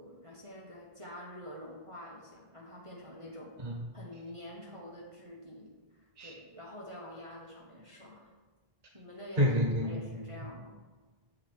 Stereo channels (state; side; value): late; left; 1.5 ms